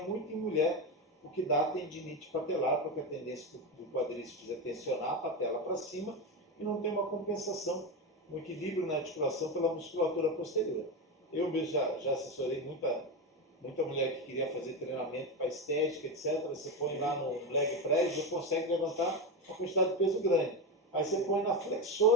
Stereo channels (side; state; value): both; normal; correlation 0.15